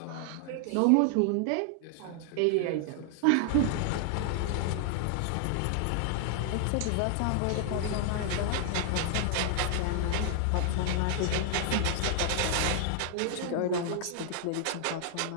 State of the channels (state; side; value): different; both; correlation 0.00